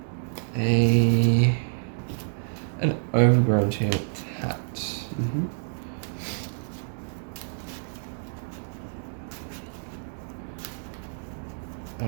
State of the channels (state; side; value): silent; left; digital silence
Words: an Overgrown Tomb tapped. Mm-hmm.